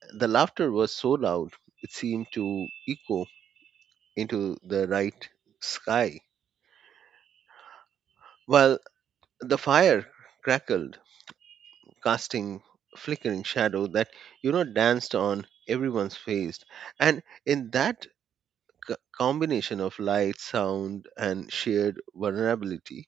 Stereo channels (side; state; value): left; quieter; 9.1 dB